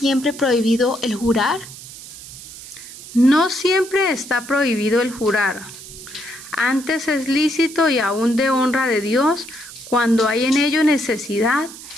prohibido el jurar? No siempre está prohibido el jurar. Antes es lícito y aún de honra de Dios cuando hay en ello necesidad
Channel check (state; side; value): noise; right; hiss, 15 dB below the sound